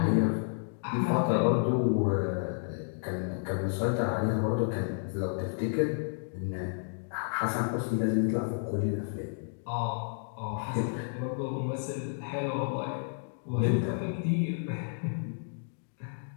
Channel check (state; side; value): silent; right; digital silence